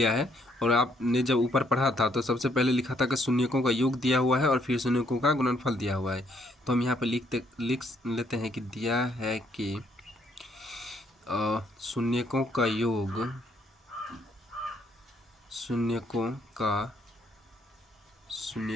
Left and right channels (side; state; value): both; normal; correlation 0.70